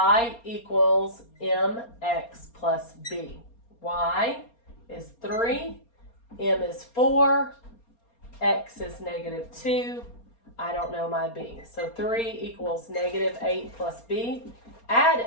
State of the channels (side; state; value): right; late; 4.3 ms